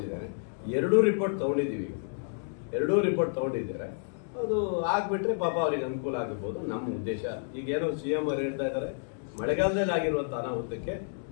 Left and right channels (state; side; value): silent; right; digital silence